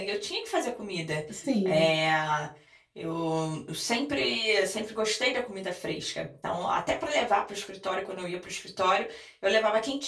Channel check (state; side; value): identical; both; correlation 1.00